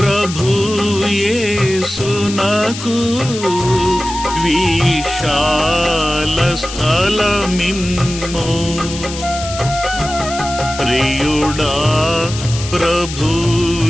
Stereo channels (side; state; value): left; noise; hiss, 10 dB below the sound